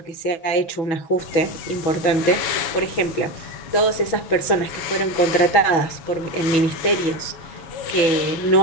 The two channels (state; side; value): late; right; 6.1 ms